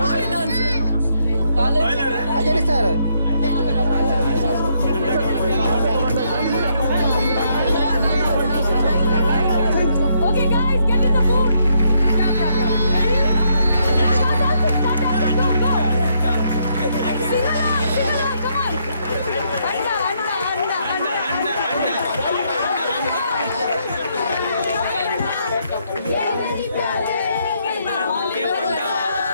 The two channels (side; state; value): both; inverted; correlation -0.74